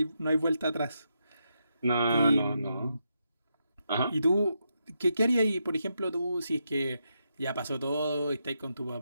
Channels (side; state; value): both; inverted; correlation -0.83